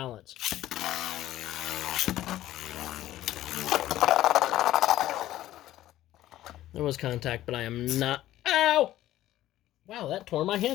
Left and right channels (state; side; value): quieter; right; 14.2 dB